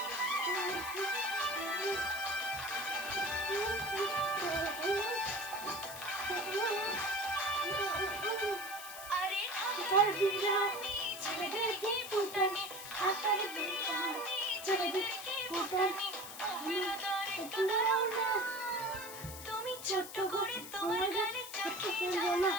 আরে হাতার বিরানি ছেলেদের কি ফুটানি হাতার বিরানি ছেলেদের কি ফুটানি একটু দাঁড়াও না তুমি ছোট্ট করে তোমার গালে চোখে ফেলবো না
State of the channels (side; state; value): left; noise; hiss, 12 dB below the sound